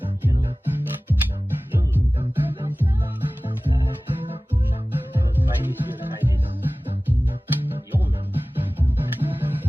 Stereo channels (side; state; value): both; normal; correlation 0.98